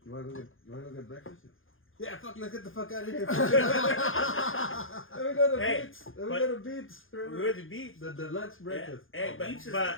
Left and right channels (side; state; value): right; late; 0.59 ms